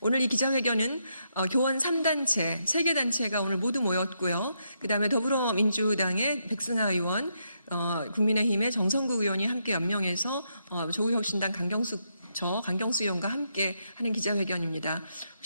이 기자회견은 교원 3단체, 3개 단체가 오늘 모두 모였고요. 그다음에 더불어민주당의 백승하 의원, 국민의힘의 정성국 의원이 함께 연명해서 조국혁신당 강경수 의원과 함께 하는 기자회견입니다.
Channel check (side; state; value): both; inverted; correlation -0.80